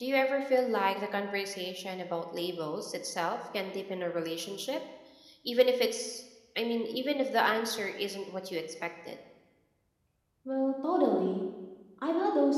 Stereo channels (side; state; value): both; identical; correlation 1.00